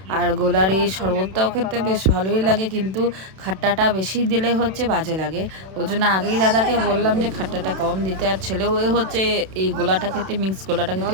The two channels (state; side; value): late; left; 32 ms